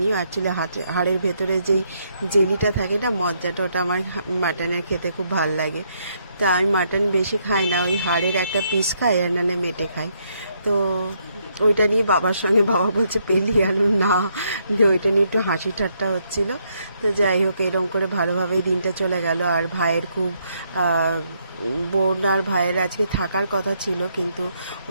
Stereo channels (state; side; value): inverted; both; correlation -0.74